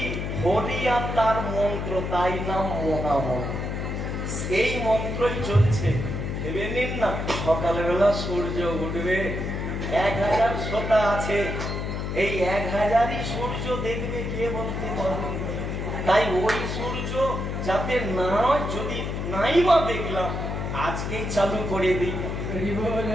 হরি আর তার মন্ত্র, তাই নাম মহামন্ত্র। সেই মন্ত্রই চলছে। ভেবে নিন না, সকালবেলা সূর্য উঠবে, 1000 শ্রোতা আছে, এই 1000ই সূর্য দেখবে কে বলতে পারবে? তাই ওই সূর্য যাতে না, যদি নাই বা দেখলাম, আজকেই চালু করে দিই।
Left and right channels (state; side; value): noise; left; hum, 3 dB below the sound